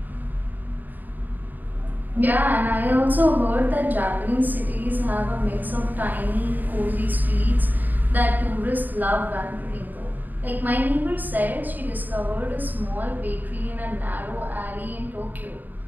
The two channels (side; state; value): left; late; 0.087 ms